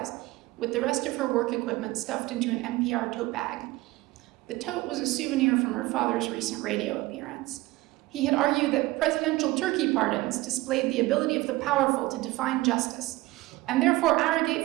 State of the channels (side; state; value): left; quieter; 19.6 dB